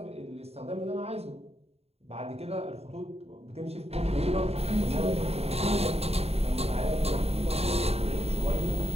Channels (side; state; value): left; late; 0.30 ms